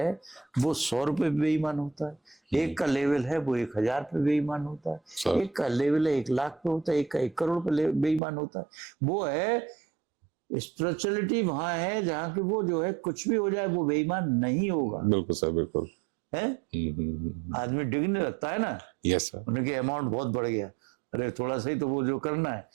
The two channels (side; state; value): left; drops out; at 8.2 s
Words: वो 100 रुपए पे बेईमान होता है, एक का लेवल है वो 1000 पे बेईमान होता है, एक का लेवल है 1 लाख पे होता है, एक का 1 करोड़ पे बेईमान होता है। वो है स्पिरिचुअलिटी, वहां है जहां कि वो जो है कुछ भी हो जाए वो बेईमान नहीं होगा। बिल्कुल सर, बिल्कुल है। आदमी डिगने लगता है ना। Yes sir. उनके अमाउंट बहुत बढ़ गया, अरे थोड़ा सा ही तो वो जो करना है,